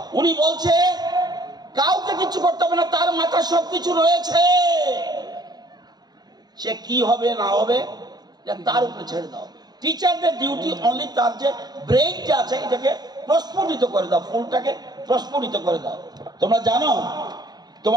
উনি বলছে কাউকে কিছু করতে হবে না, তার মাথায় সবকিছু রয়েছে, সে কি হবে না হবে তার উপরে ছেড়ে দাও। টিচারদের ডিউটি অনলি তার যে ব্রেইনটা আছে এটাকে প্রস্ফুটিত করে দাও, ফুলটাকে প্রস্ফুটিত করে দাও। তোমরা জানো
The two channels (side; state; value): left; late; 0.20 ms